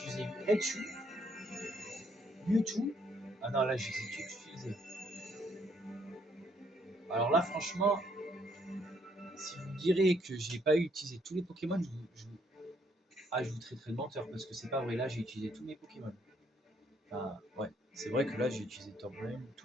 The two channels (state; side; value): normal; both; correlation 0.69